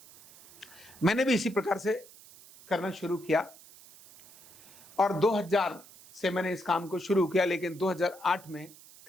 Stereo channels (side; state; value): right; noise; hiss, 22 dB below the sound